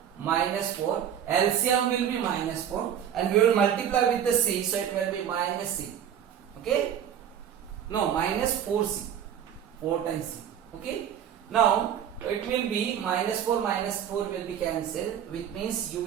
minus 4, LCM will be minus 4, and we will multiply with the c, so it will be minus c. Okay, no, minus 4c, 4 times c. Okay, now it will be minus 4 will be cancelled, which means you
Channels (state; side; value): quieter; left; 9.3 dB